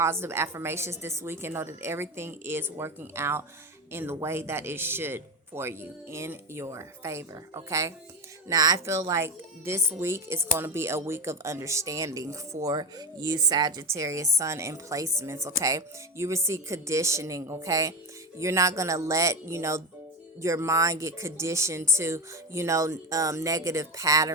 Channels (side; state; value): both; normal; correlation 0.19